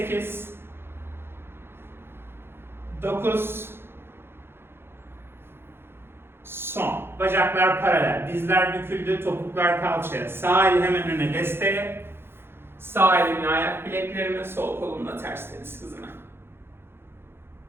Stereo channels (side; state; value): left; late; 0.11 ms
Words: 9, son. Bacaklar paralel, dizler büküldü, topuklar kalçaya. Sağ el hemen öne desteğe. Sağ elimle ayak bileklerime, sol kolumla ters deniz hızına.